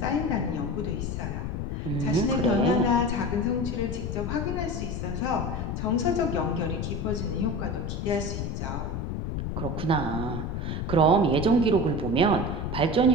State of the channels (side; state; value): left; noise; rumble, 3 dB below the sound